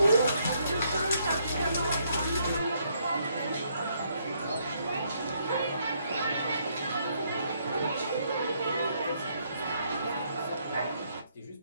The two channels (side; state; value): both; inverted; correlation -0.72